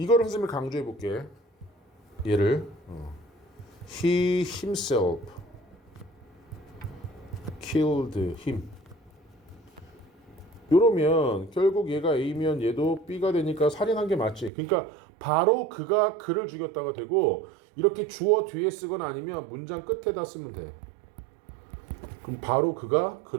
선생님이 강조해 볼게. 얘를 he himself killed him. 이러면 결국 얘가 A면 얘도 B가 되니까 살인한 게 맞지. 그러니까 바로 그가 그를 죽였다가 되고 이렇게 주어 뒤에 쓰거나 아니면 문장 끝에다 쓰면 돼. 그럼 바로 그가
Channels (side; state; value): left; drops out; at 14.5 s